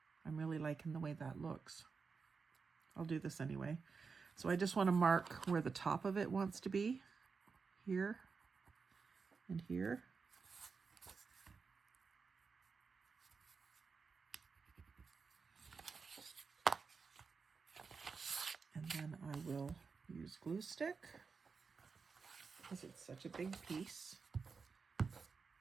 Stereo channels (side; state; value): left; quieter; 5.1 dB